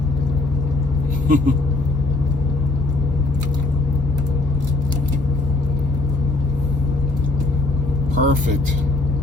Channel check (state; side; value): quieter; right; 3.2 dB